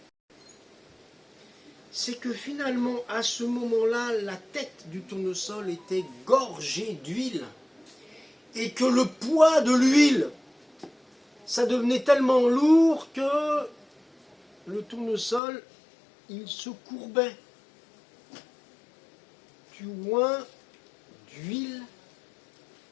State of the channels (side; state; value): right; drops out; at 15.4 s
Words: c'est que finalement, à ce moment-là, la tête du tournesol était gorgée d'huile, et que le poids de l'huile, ça devenait tellement lourd que le tournesol, il se courbait. Tu oins d'huile